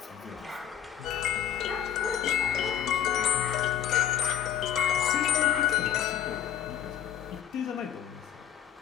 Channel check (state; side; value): quieter; right; 10.1 dB